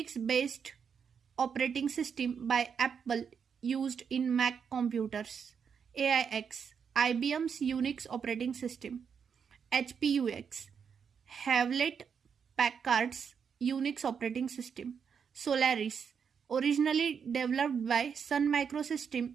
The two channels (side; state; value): left; quieter; 6.8 dB